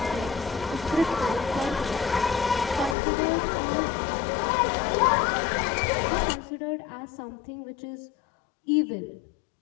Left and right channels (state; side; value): drops out; right; at 3.0 s